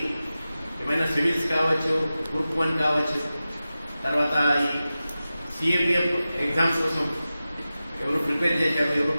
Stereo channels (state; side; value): inverted; both; correlation -0.94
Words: ఏమైనా సివిల్స్ కావచ్చు, గ్రూప్ 1 కావచ్చు, తర్వాత ఈ సిఏపిఎఫ్ ఎగ్జామ్స్ కోసం ఎవరు ప్రిపేర్ చేశారు, ఎవరు